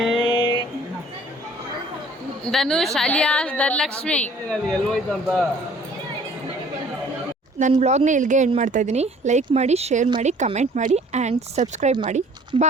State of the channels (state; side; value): normal; both; correlation 0.53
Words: ಧನುಷ್ ಅಲಿಯಾಸ್ ಧನಲಕ್ಷ್ಮಿ. ನನ್ನ ವ್ಲಾಗ್ನ ಇಲ್ಲಿಗೆ ಎಂಡ್ ಮಾಡ್ತಾಯಿದ್ದೀನಿ. ಲೈಕ್ ಮಾಡಿ, ಶೇರ್ ಮಾಡಿ, ಕಮೆಂಟ್ ಮಾಡಿ ಆ್ಯಂಡ್ ಸಬ್ಸ್ಕ್ರೈಬ್ ಮಾಡಿ.